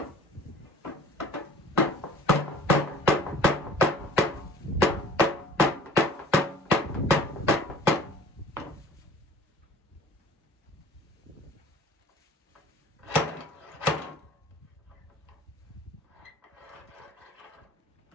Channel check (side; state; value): both; normal; correlation 0.47